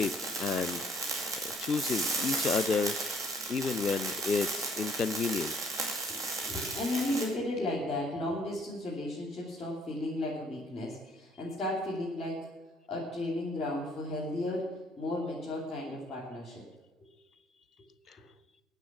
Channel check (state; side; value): normal; both; correlation 0.63